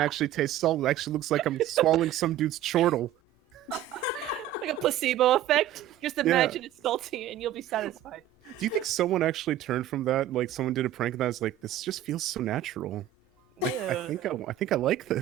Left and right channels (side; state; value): left; quieter; 11.7 dB